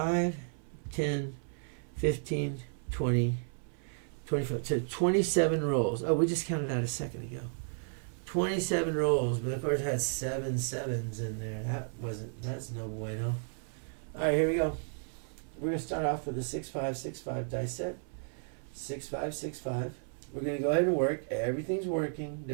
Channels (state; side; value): silent; left; 56 dB below the other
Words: 10, 15, 20, 25. So 27 rolls. Oh, we just counted that a second ago. 27 rolls, but of course it had 7 sevens in there. That's no bueno. Alright, here we go. We're going to start off with a 6-5, 6-5 dice set. 6-5, 6-5. We're going to go ahead and work. Everything's working.